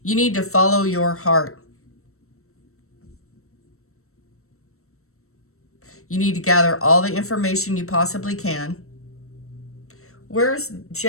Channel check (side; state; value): right; late; 0.63 ms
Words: You need to follow your heart. You need to gather all the information you possibly can. Where's